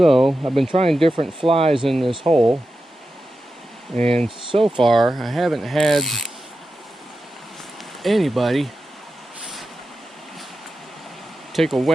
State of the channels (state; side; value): normal; both; correlation 0.91